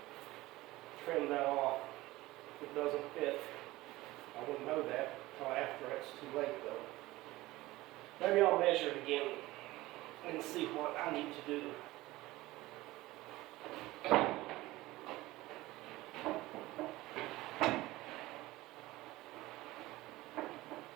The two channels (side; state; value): left; quieter; 18.5 dB